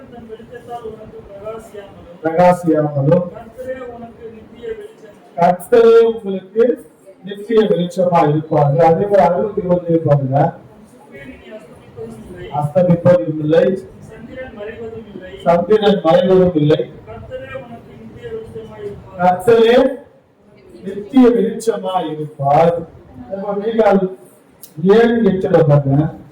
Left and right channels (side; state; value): both; identical; correlation 1.00